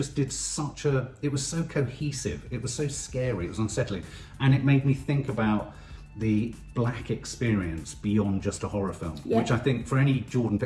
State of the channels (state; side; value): identical; both; correlation 1.00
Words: did such a... It was so cohesive, it was so scary, it was unsettling, and it made me think about the black experience beyond just a horror film, Yeah. which I think for any